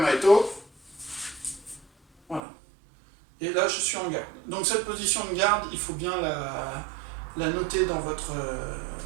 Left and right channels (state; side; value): drops out; left; at 2.4 s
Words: Voilà. Et là, je suis en garde. Donc, cette position de garde, il faut bien la noter dans votre